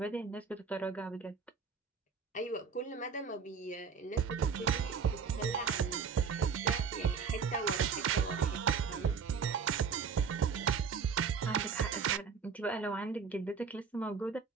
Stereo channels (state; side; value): quieter; left; 5.9 dB